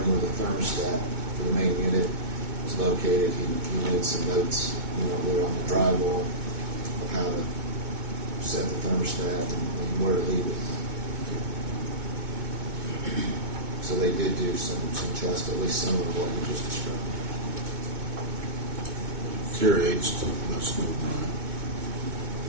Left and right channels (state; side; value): late; left; 2.2 ms